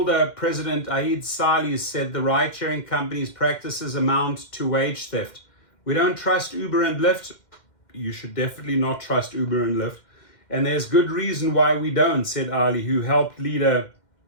President Aid Salih said the ride-sharing company's practices amount to wage theft. We don't trust Uber and Lyft. You should definitely not trust Uber and Lyft. And there's good reason why we don't, said Ali, who helped lead a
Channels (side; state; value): right; late; 2.1 ms